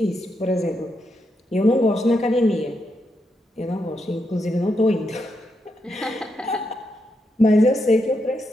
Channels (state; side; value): normal; both; correlation 0.82